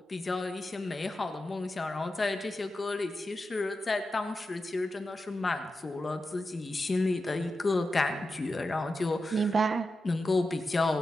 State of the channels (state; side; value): normal; both; correlation 0.90